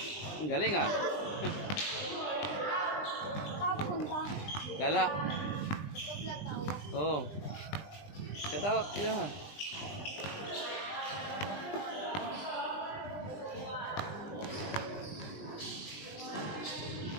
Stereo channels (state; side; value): late; right; 20 ms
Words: Ang galing ah. Papunta. Gala. Vlog tayo. Oh. Get out. Yeah.